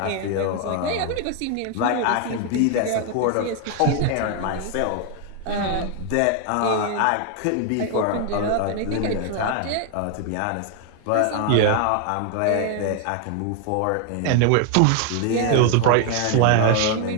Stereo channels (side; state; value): both; different; correlation 0.00